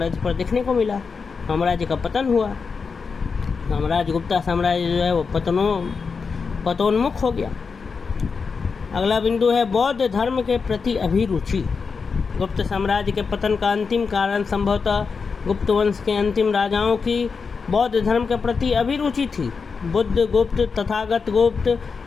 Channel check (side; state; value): right; quieter; 5.2 dB